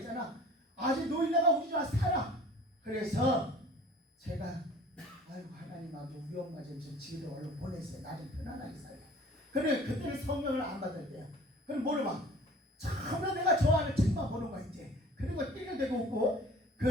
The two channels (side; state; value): both; normal; correlation 0.46